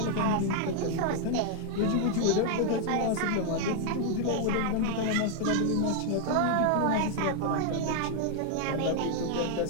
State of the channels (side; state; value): both; different; correlation 0.00